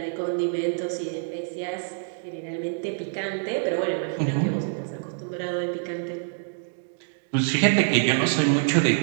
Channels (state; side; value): silent; left; digital silence